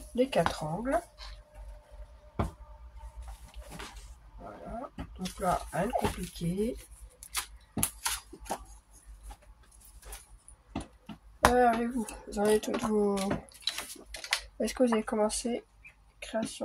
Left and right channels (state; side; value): identical; both; correlation 1.00